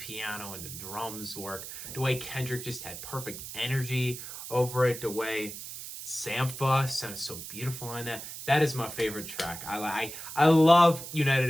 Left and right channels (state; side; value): noise; right; hiss, 10 dB below the sound